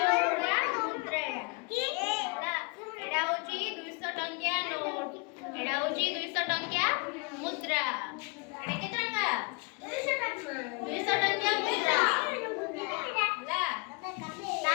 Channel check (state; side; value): quieter; right; 31.3 dB